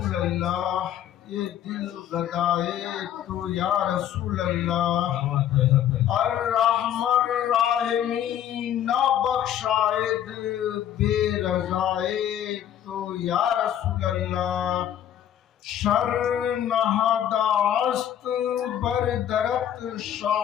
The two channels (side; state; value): right; quieter; 10.6 dB